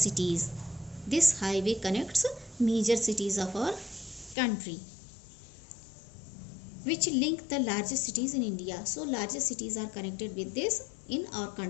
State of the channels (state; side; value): drops out; right; at 4.4 s